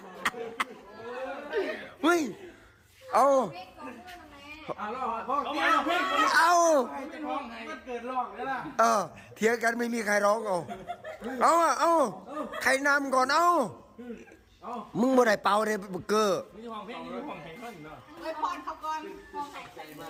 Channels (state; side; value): identical; both; correlation 1.00